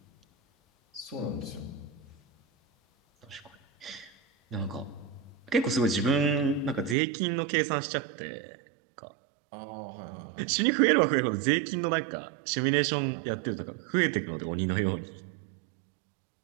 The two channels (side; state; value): left; drops out; at 7.0 s